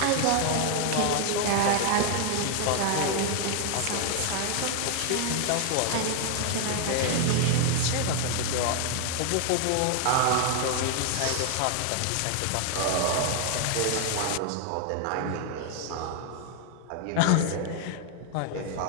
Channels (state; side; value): different; both; correlation 0.00